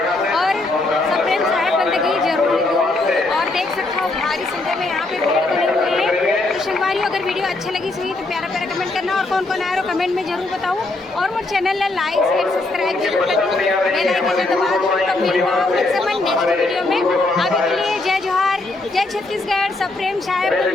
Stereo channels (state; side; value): quieter; right; 3.0 dB